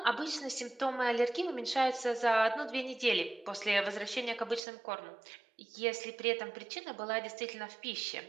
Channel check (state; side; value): drops out; left; at 4.6 s